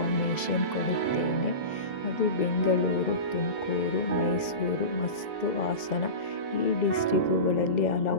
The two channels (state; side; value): late; right; 2.0 ms